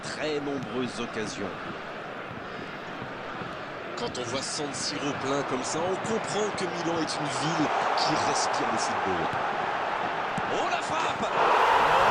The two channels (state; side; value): identical; both; correlation 1.00